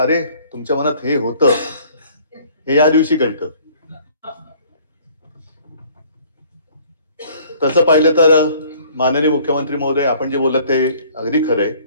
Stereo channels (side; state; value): both; inverted; correlation -0.56